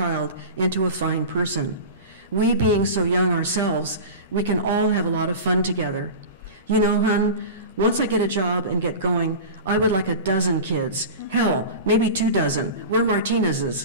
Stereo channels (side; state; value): both; inverted; correlation -0.31